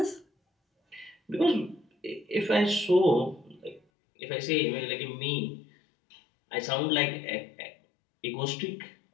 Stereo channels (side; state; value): right; drops out; at 3.8 s